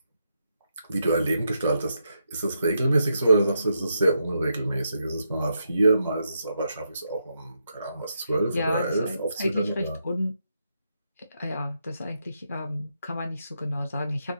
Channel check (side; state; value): both; inverted; correlation -0.82